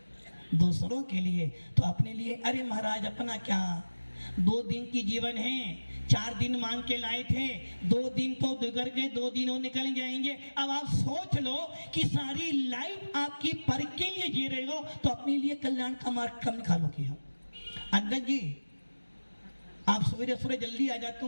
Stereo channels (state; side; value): inverted; both; correlation -1.00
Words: दूसरों के लिए, तो अपने लिए अरे महाराज अपना क्या, 2 दिन की जीवन है, 4 दिन मांग के लाए थे, 2 दिन तो गुजर गए, 2 दिन और निकल जाएंगे। अब आप सोच लो कि सारी लाइफ आपकी पर के लिए जी रहे हो तो अपने लिए कल्याण का मार्ग कम निकालोगे। हम अंगद जी, आप सवेरे सवेरे जल्दी आ जाते हो,